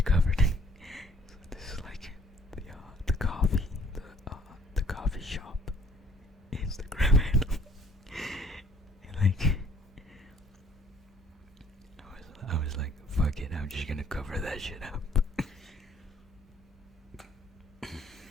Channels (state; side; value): normal; both; correlation 0.59